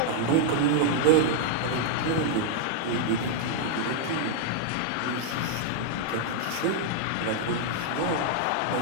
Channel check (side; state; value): both; different; correlation -0.01